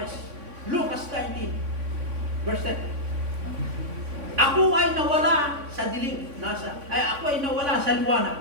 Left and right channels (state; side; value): late; left; 3.5 ms